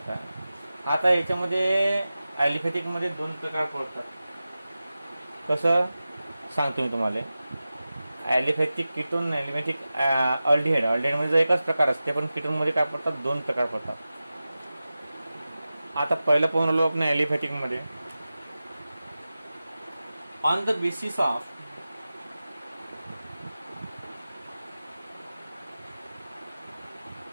आता याच्यामध्ये ॲलिफॅथिक मध्ये दोन प्रकार पडतात. कसं सांगतो मी तुम्हाला. Aliphatic ketone, aliphatic aldehyde. अल्डिहाइडमध्ये एकच प्रकार असते, पण कीटोनमध्ये काय पडतात, 2 प्रकार पडतात. आता पहिलं पाहून आलो आपण ॲलिफॅटिकमध्ये. On the basis of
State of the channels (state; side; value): inverted; both; correlation -0.95